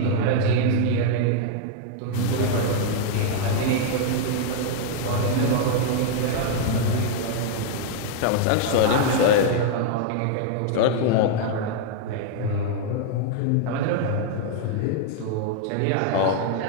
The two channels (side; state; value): both; different; correlation 0.00